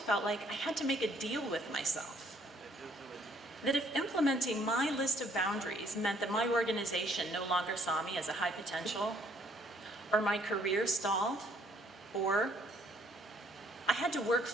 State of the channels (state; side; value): normal; both; correlation 0.63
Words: like I had to make a deal with myself. That if implementing my list of boundaries meant that my organization no longer saw me as a high potential, or my career stalled, or I had to work